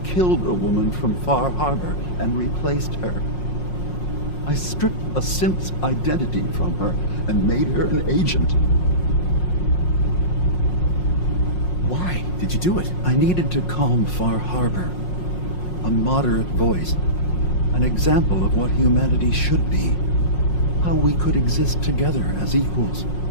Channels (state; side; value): late; right; 5.5 ms